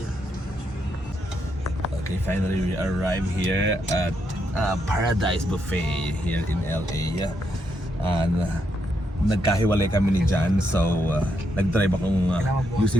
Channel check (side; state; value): both; normal; correlation 0.79